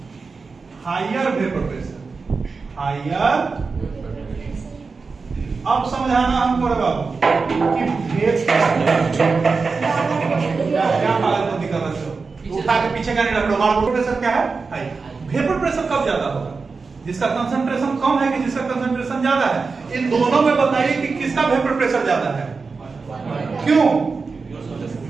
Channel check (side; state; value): left; quieter; 4.5 dB